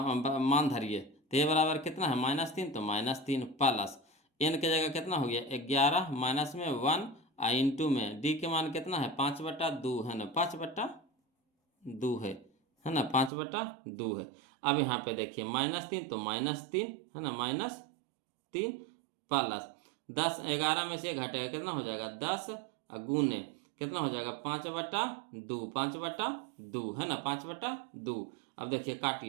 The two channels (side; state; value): left; drops out; at 13.3 s